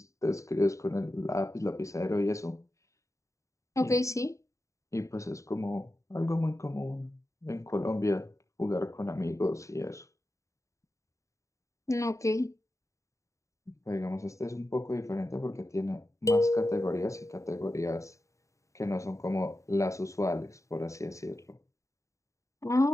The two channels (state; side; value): late; right; 0.15 ms